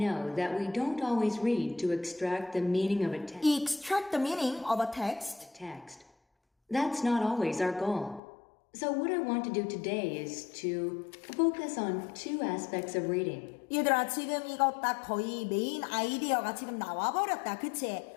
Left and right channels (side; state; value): right; drops out; at 8.2 s